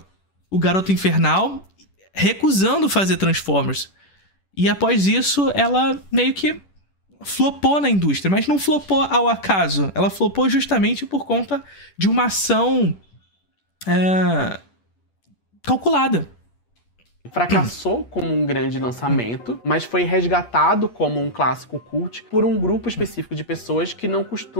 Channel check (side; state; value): right; late; 10 ms